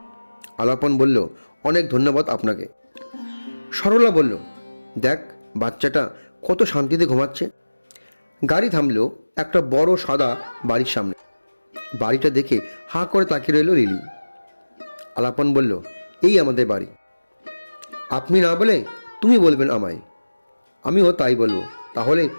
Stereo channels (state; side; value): inverted; both; correlation -1.00